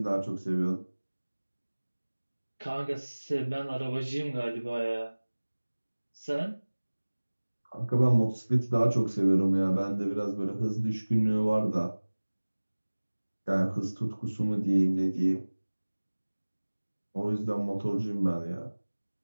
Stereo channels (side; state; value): both; inverted; correlation -1.00